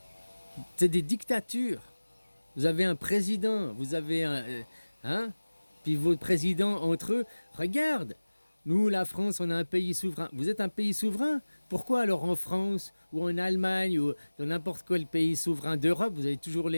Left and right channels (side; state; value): both; inverted; correlation -1.00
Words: C'est des dictatures. Vous avez un président, vous avez un... hein? Puis vos présidents entre eux, regarde, nous, la France, on est un pays souverain. Vous êtes un pays souverain? Pourquoi alors en France ou en Allemagne ou dans n'importe quel pays souverain d'Europe, vous avez toujours